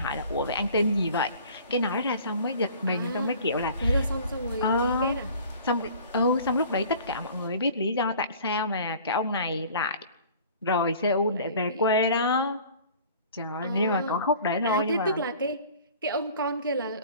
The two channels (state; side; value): inverted; both; correlation -0.47